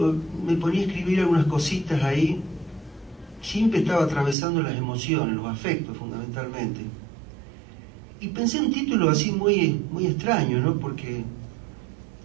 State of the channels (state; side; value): drops out; left; at 4.4 s